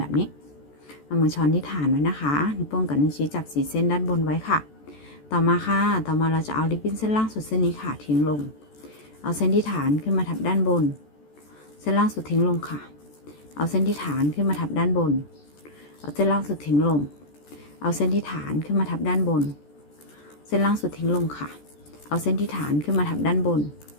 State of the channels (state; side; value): late; right; 14 ms